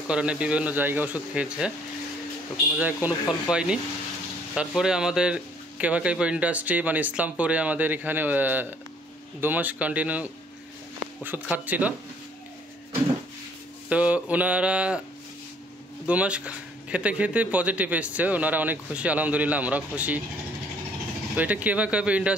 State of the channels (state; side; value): normal; both; correlation 0.61